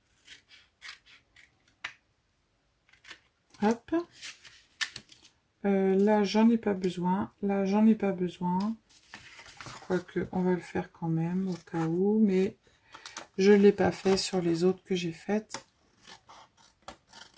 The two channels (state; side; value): identical; both; correlation 1.00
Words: Hop. Là, j'en ai pas besoin. Là, j'en ai pas besoin. Quoique, on va le faire quand même, au cas où. Mais je ne l'ai pas fait sur les autres que j'ai faites.